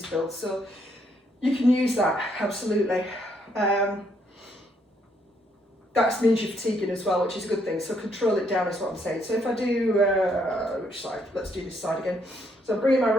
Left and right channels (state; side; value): normal; both; correlation 0.72